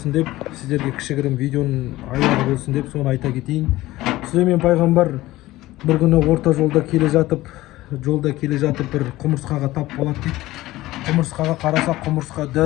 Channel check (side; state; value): right; quieter; 17.2 dB